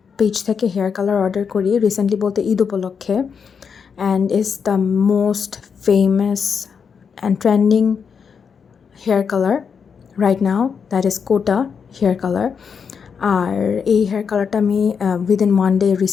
পেজ থেকে হেয়ার কালার অর্ডার করি, রিসেন্টলি বলতে ঈদ উপলক্ষে, and is the most famous and trending hair color right now, that is Kota hair color. আর এই hair কালারটা আমি উইদিন 1 day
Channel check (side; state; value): right; quieter; 6.4 dB